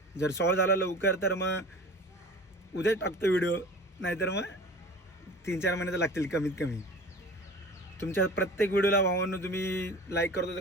जर सॉल्व झाला लवकर तर मग उद्याच टाकतो व्हिडिओ, नाहीतर मग 3-4 महिने तर लागतील कमीत कमी. तुमच्या प्रत्येक व्हिडिओला भावांनो तुम्ही लाईक करतो तर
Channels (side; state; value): both; normal; correlation 0.39